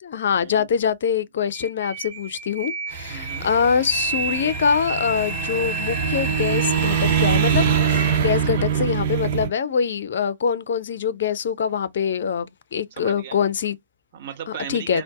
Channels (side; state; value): both; inverted; correlation -0.45